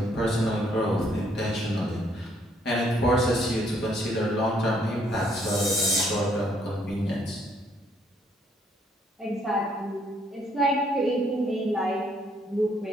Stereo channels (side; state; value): both; normal; correlation 0.68